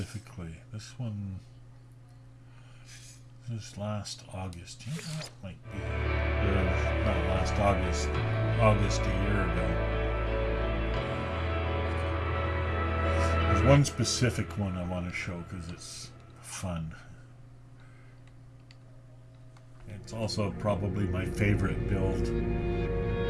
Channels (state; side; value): identical; both; correlation 1.00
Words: This one is last August. You know, that might be. Not last August. August a year ago. There's one specific one I want to show because it's fun. It's also probably my favorite build.